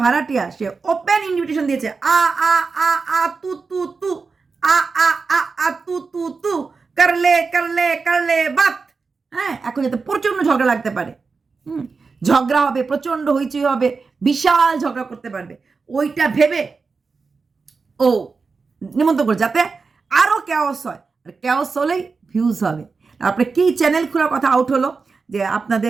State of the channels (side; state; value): left; quieter; 4.6 dB